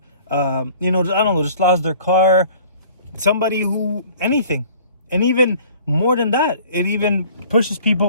I don't know, just lost their car, somebody who anything. And even more than that, it even pushes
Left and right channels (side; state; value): both; inverted; correlation -0.51